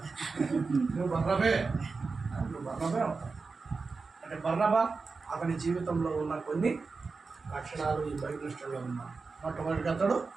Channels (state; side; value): quieter; left; 4.4 dB